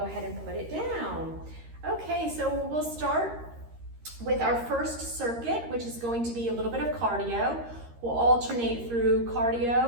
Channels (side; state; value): left; late; 13 ms